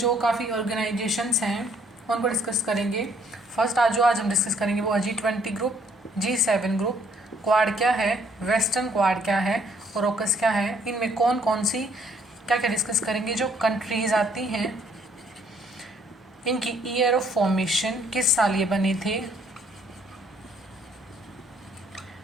काफ़ी ऑर्गेनाइजेशंस हैं उनको डिस्कस करेंगे। फर्स्ट आज हम डिस्कस करेंगे वो G20 group, G7 group, quad क्या है, वेस्टर्न क्वाड क्या है और ओकस क्या है, इनमें कौन कौन सी क्या क्या डिस्कस करेंगे। जो कंट्रीज़ आती हैं इनकी ईयर ऑफ फॉर्मेशन, किस साल ये बने थे,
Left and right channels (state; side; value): normal; both; correlation 0.64